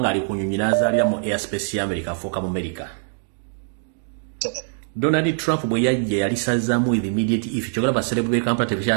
ku nnyonyi n'azaalira mu airspace ya America afuuka mu America. Donald Trump bwe yajja yalisazaamu with immediate effect. Kyogera baserebu be Kampala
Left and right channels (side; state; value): left; silent; digital silence